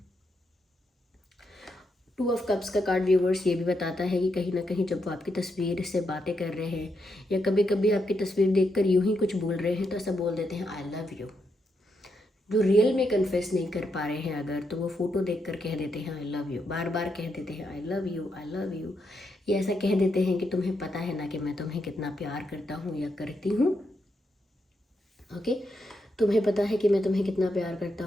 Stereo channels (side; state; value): both; normal; correlation 0.81